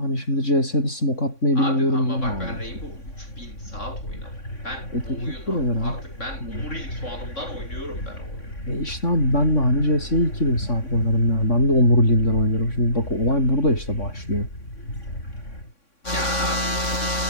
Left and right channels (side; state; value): right; late; 3.6 ms